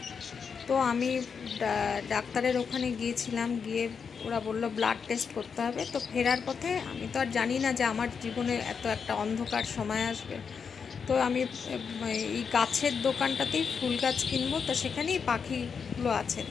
তো আমি ডাক্তারের ওখানে গিয়েছিলাম। গিয়ে ওরা বললো ব্লাড টেস্ট করতে হবে। তো ফেরার পথে আমি তো আর জানি না যে আমার জীবনে এত একটা অন্ধকার সময় আসবে। তো আমি এই গাছের দোকানটাতেই ফুল গাছ কিনবো, তো সেখানেই পাখিগুলো আছে,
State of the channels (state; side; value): quieter; right; 6.2 dB